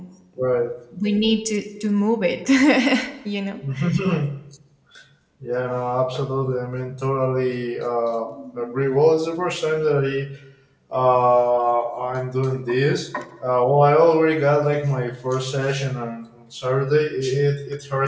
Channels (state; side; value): identical; both; correlation 1.00